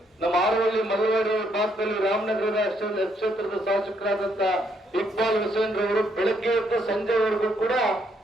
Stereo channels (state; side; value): normal; both; correlation 0.72